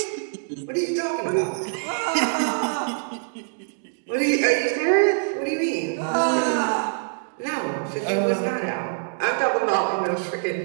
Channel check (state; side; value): silent; left; digital silence